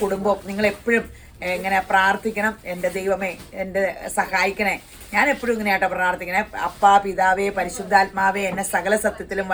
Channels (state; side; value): identical; both; correlation 1.00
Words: കുടുംബവും. നിങ്ങളെപ്പോഴും ഇങ്ങനെ പ്രാർത്ഥിക്കണം, എൻ്റെ ദൈവമേ എന്നെ സഹായിക്കണേ. ഞാൻ എപ്പോഴും ഇങ്ങനെയാട്ടോ പ്രാർത്ഥിക്കണേ. അപ്പാ, പിതാവേ, പരിശുദ്ധാത്മാവേ, എന്നെ സകല സത്യത്തിലും